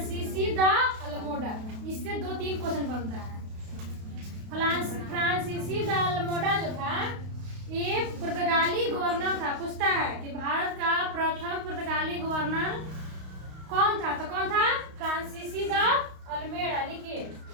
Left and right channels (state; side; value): late; left; 32 ms